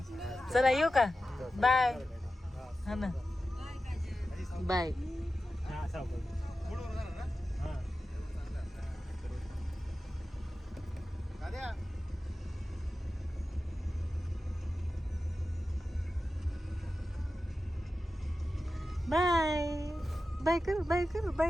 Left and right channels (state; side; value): normal; both; correlation 0.93